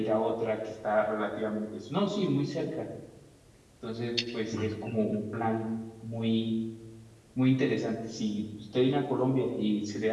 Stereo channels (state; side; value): identical; both; correlation 1.00